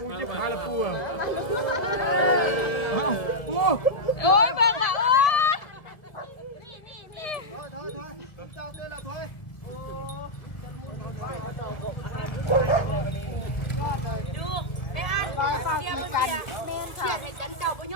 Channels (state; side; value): late; right; 1.9 ms